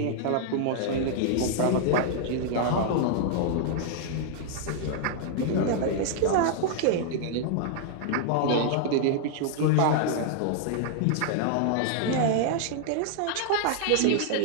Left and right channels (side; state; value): both; different; correlation -0.01